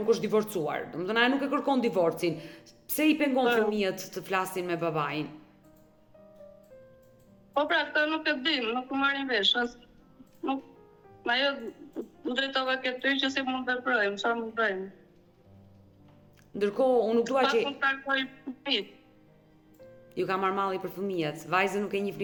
është divorcuar? Domethënë ajo nuk e kërkon divorcin. Pse i pengon fëmijët të flasin me babain? Po pra, këtë nuk e dim, nuk më marrin vesh. Ajo më drejtova ke ty që si mund të veprojmë, çfarë mund të bëjmë. Ndërkohë, unë nuk dua që mund të takoj fëmijët. ju ka marrë malli për fëmijët, vajzën nuk e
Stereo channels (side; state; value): both; identical; correlation 1.00